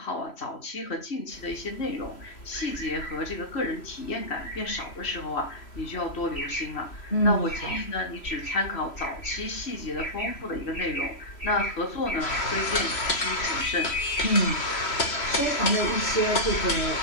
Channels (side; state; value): right; late; 3.1 ms